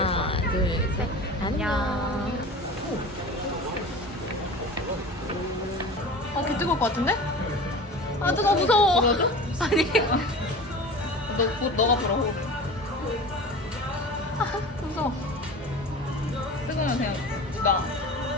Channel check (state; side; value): normal; both; correlation 0.35